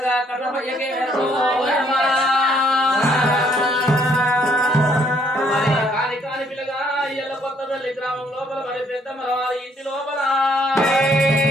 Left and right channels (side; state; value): both; normal; correlation 0.66